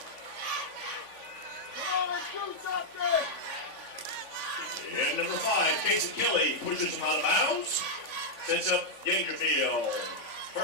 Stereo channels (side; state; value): right; late; 3.5 ms